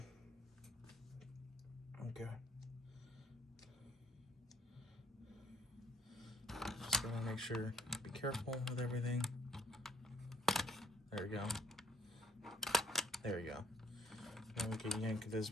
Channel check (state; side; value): normal; both; correlation 0.64